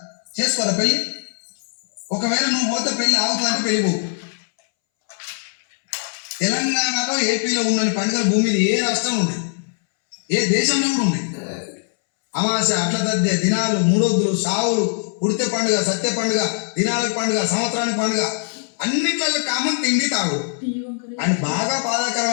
చేసుకోరా పెళ్ళి. ఒకవేళ నువ్వు పోతే పెళ్ళి ఆగుతుందంటే పెళ్ళి పోకు. తెలంగాణలో, ఏపీలో ఉన్న పండుగలు భూమి మీద ఏ రాష్ట్రం ఉంది, ఏ దేశంలో కూడా ఉన్నాయి. అమావాస్య, అట్ల తద్దే, దినాలు, 3 రోజులు, సావులు, ఉడితే పండుగ, సత్య పండుగ, దినాలకు పండుగ, సంవత్సరానికి పండుగ, అన్నిట్లలో కామన్ తిండి తాగుడు. అండ్ బాగా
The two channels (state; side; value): silent; right; 65 dB below the other